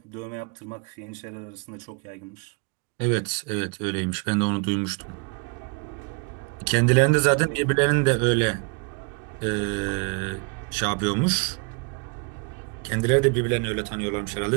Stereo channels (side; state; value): left; quieter; 34.2 dB